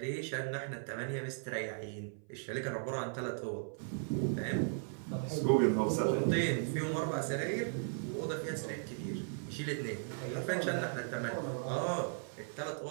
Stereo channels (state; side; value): silent; left; 53 dB below the other